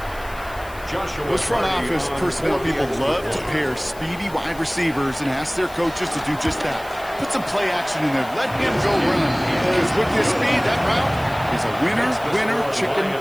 Those front office personnel people love to pair speedy wide receivers and ask their coaches to do just that. Put some play action in there. Let him go run. Because with his speed, that route is a winner, chicken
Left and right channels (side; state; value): left; noise; hiss, 20 dB below the sound